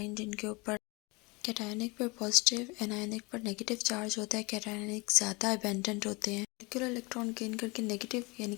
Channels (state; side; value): quieter; right; 26.5 dB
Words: जिनके ऊपर कैटायनिक पर पॉजिटिव, एनायनिक पर नेगेटिव चार्ज होता है। कैटायनिक ज़्यादा अबेंडेंट होते हैं। मॉलिक्यूलर इलेक्ट्रॉन गेन करके नेगेटिव यानी